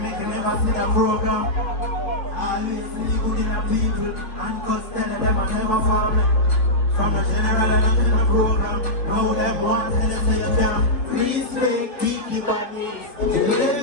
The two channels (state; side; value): late; right; 2.9 ms